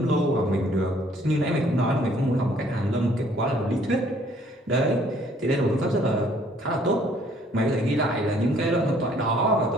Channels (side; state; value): both; normal; correlation 0.61